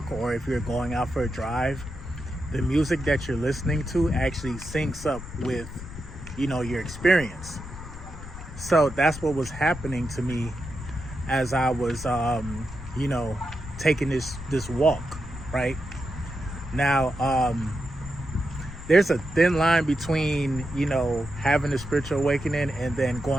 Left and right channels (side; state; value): left; noise; rumble, 12 dB below the sound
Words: or if you're going out for a drive, the music that you're listening to actually syncs up with, your experience. So that's what was happening to me as I was, taking this walk, right? Now, there's a thin line between, having a spiritual awakening and then